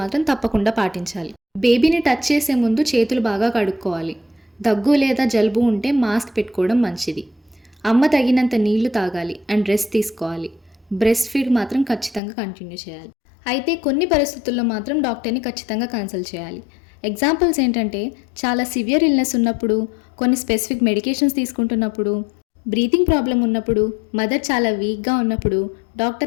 తప్పకుండా పాటించాలి. బేబీని టచ్ చేసే ముందు చేతులు బాగా కడుక్కోవాలి. దగ్గు లేదా జలుబు ఉంటే మాస్క్ పెట్టుకోవడం మంచిది. అమ్మ తగినంత నీళ్లు తాగాలి అండ్ రెస్ట్ తీసుకోవాలి. బ్రెస్ట్ ఫీడ్ మాత్రం ఖచ్చితంగా కంటిన్యూ చేయాలి. అయితే కొన్ని పరిస్థితుల్లో మాత్రం డాక్టర్ని ఖచ్చితంగా కన్సల్ట్ చేయాలి. ఎగ్జాంపుల్స్ ఏంటంటే, చాలా సివియర్ ఇల్నెస్ ఉన్నప్పుడు, కొన్ని స్పెసిఫిక్ మెడికేషన్స్ తీసుకుంటున్నప్పుడు, బ్రీతింగ్ ప్రాబ్లం ఉన్నప్పుడు, మదర్ చాలా వీక్గా ఉన్నప్పుడు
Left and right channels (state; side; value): drops out; right; at 12.2 s